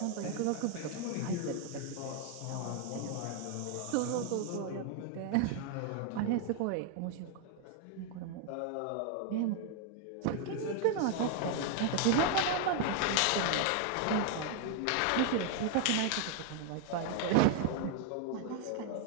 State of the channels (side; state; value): both; different; correlation 0.00